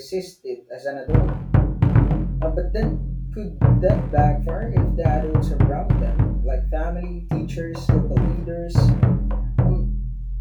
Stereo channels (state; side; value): identical; both; correlation 1.00